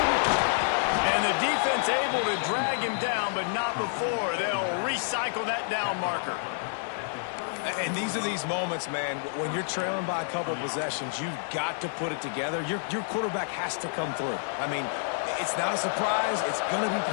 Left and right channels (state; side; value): silent; right; digital silence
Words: And the defense able to drag him down, but not before. They'll recycle that down marker. And these are these moments, man, when you're trailing by a couple of possessions, you've got to put it together. Your quarterback has to come through. I mean, it's not a surprise. It's going to be